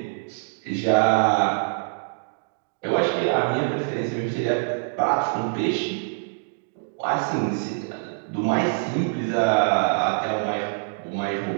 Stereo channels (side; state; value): left; silent; digital silence